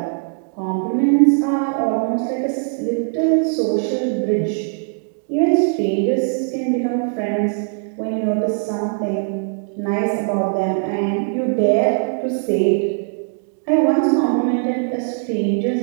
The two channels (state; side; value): silent; left; 62 dB below the other